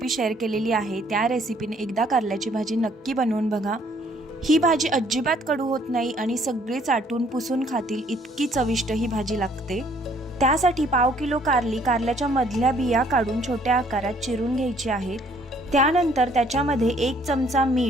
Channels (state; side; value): normal; both; correlation 0.62